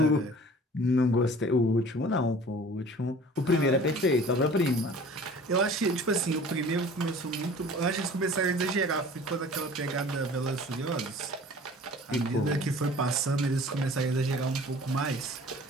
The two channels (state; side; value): normal; both; correlation 0.46